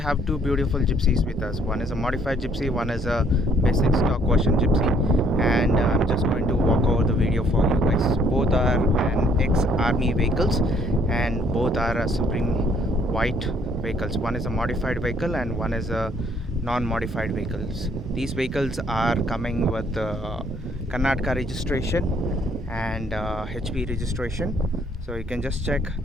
two beautiful gypsies with us. One is a modified gypsy, one is a basic stock version gypsy, and I'm just going to walk over the video for you guys. Both are an Ex Army vehicles and both are a Supreme White vehicles. One is a modified vehicle and one is a non-modified vehicles. These vehicles are coming with Karnataka registration and HP registration. So you can just check.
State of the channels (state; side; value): normal; both; correlation 0.64